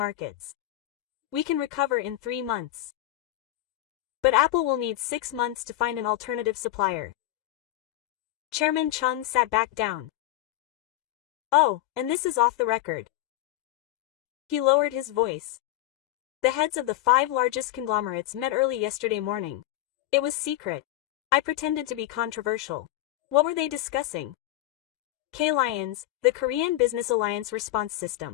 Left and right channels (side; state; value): right; quieter; 15.1 dB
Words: We can recover in 3 months. But Apple will need 6 months to find an alternative supplier. Chairman Chung sat back down. Oh, and this is off the record. He lowered his voice. The heads of the 5 largest conglomerates met early yesterday morning. It was secret. I pretended to be controversial. What were they discussing? K-Lions, the Korean Business Alliance response